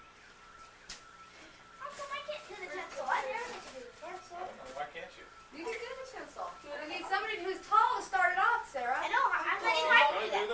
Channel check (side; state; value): both; identical; correlation 1.00